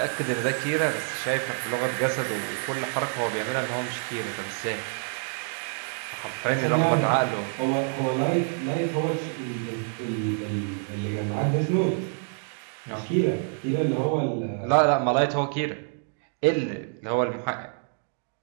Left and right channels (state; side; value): silent; left; 60 dB below the other